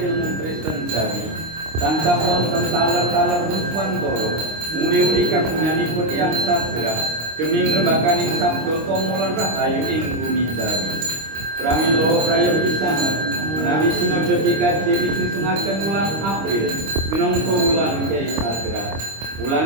Kristen jari. Tansah wonten taler-taler Ruswantoro muri-uri kagunganipun Yang Sadra demi ngrembakaning sabda tomolan rahayu ing bumi jari. Pramila praya pisan menawi sinodha PKJ disunsungaken wulan April minangka wulan Kyai Sadra.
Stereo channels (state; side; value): late; left; 26 ms